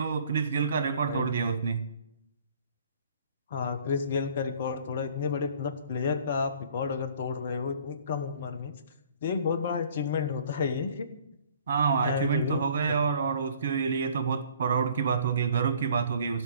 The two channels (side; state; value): both; inverted; correlation -0.55